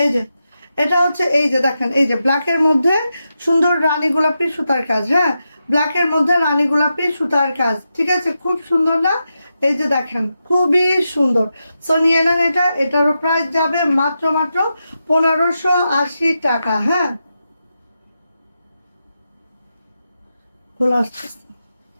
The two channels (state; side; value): inverted; both; correlation -0.88